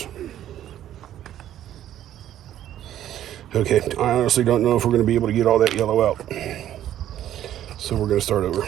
Okay, I honestly don't know if we're going to be able to get all that yellow out. So we're going to start over.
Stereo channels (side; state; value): left; quieter; 11.8 dB